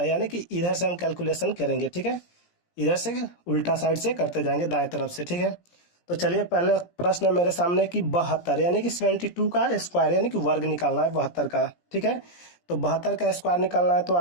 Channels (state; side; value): late; right; 17 ms